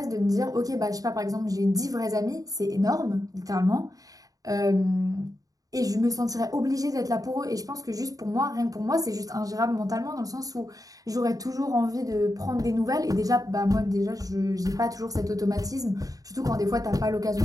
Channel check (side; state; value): left; late; 0.17 ms